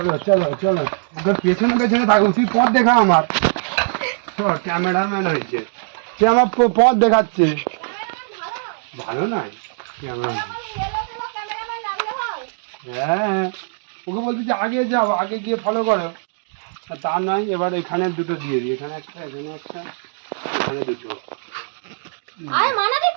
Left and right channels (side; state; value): left; silent; digital silence